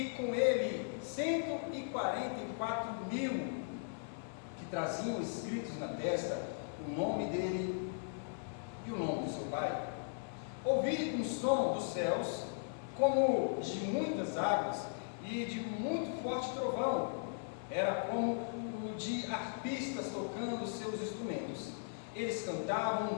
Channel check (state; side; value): silent; right; 52 dB below the other